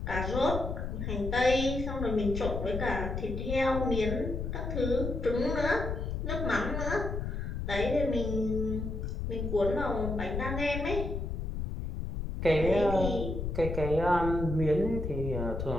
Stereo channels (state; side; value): noise; left; rumble, 4 dB below the sound